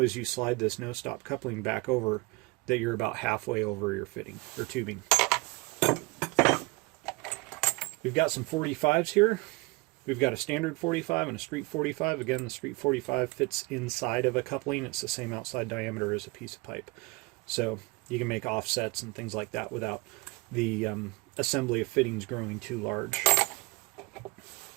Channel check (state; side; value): quieter; left; 25.4 dB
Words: as you slide this no-stop coupling back over that you're about halfway over your fitting or tubing. We've got some 45s here. We've got a standard 45 and a street 45. Again, the street 45 fits inside of a coupling. It's the same outside diameter as a piece of pipe. So you can make offsets and things like that without the assembly of fittings growing too large.